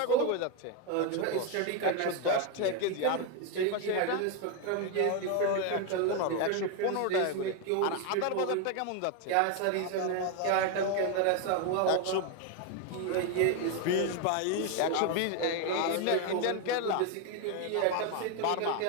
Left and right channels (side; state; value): both; different; correlation 0.02